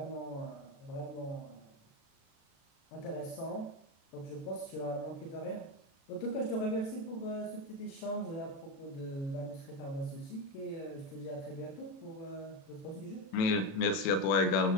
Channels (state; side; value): late; right; 36 ms